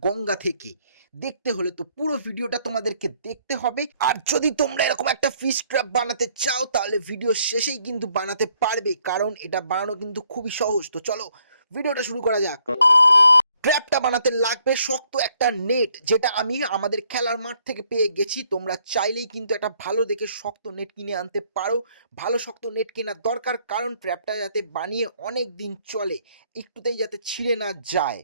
গঙ্গা থেকে। দেখতে হলে তো পুরো ভিডিওটা তোমাদেরকে দেখতে হবে। আর যদি তোমরা এরকম একটা ফিশ ট্র্যাপ বানাতে চাও তাহলে ভিডিও শেষেই কিন্তু বানাতে পারবে, কারণ এটা বানানো কিন্তু খুবই সহজ। তো চলো ভিডিওটা শুরু করা যাক। ট্র্যাপটা বানাতে লাগবে শক্ত একটা নেট, যেটা আমি আমাদের খেলার মাঠ থেকে পেয়ে গেছি। তোমরা চাইলেই কিন্তু একটা ভালো দেখে শক্ত নেট কিনে আনতে পারো। ভালো শক্ত নেট কেনার দরকার, কারণ ট্র্যাপটা যাতে বানিয়ে অনেক দিন চলে, একটুতেই যাতে ছিঁড়ে না যায়।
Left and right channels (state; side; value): inverted; both; correlation -0.68